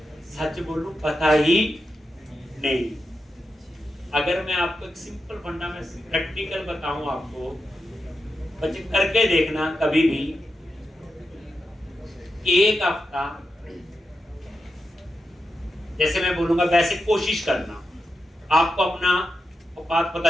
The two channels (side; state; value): both; normal; correlation 0.88